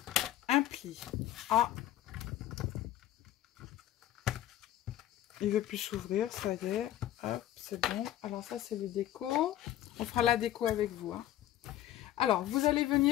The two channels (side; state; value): right; quieter; 13.0 dB